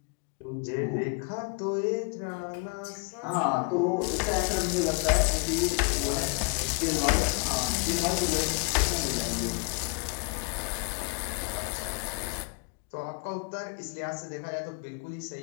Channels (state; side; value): quieter; right; 34.2 dB